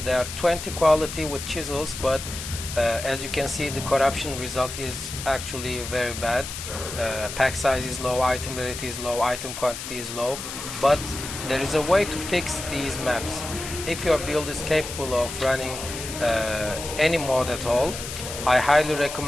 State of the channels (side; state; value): left; noise; hiss, 8 dB below the sound